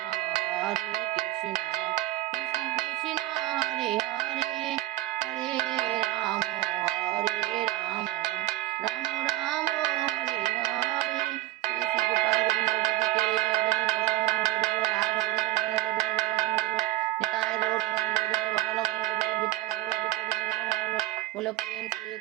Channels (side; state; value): left; quieter; 16.1 dB